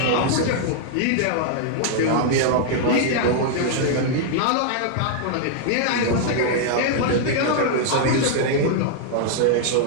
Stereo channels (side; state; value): both; different; correlation -0.01